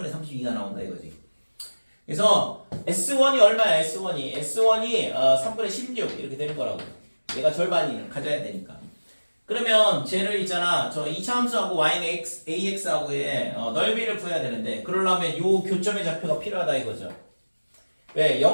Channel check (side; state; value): both; inverted; correlation -1.00